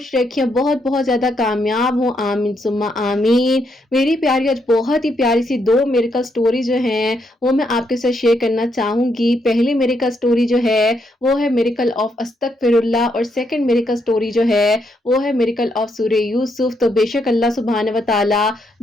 رکھیں، بہت بہت زیادہ کامیاب ہوں، آمین ثم آمین۔ میری پیاری آج بہت ہی پیاری سی دو میریکل سٹوری جو ہیں وہ میں آپ کے ساتھ شیئر کرنا چاہوں گی۔ پہلی میریکل سٹوری جو ہے وہ ہے میریکل آف استغفر اللہ، اور سیکنڈ میریکل سٹوری جو ہے وہ ہے میریکل آف سورہ یوسف۔ تو بے شک اللہ سبحانہ و تعالیٰ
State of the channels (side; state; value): both; normal; correlation 0.77